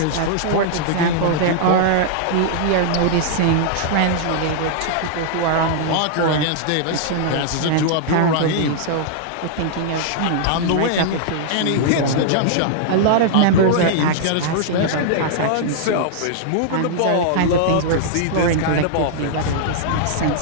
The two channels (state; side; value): different; both; correlation -0.01